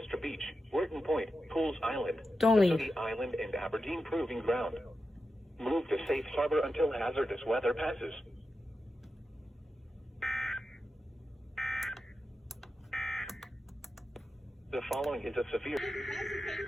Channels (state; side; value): normal; both; correlation 0.90